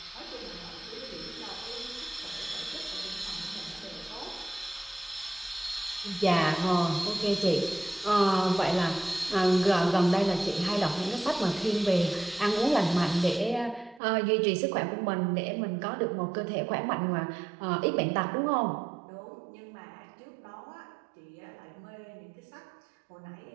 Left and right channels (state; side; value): drops out; left; at 14.0 s